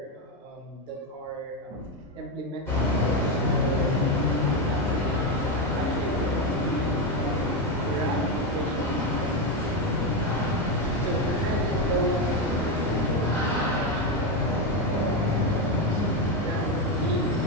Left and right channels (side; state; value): both; normal; correlation 0.09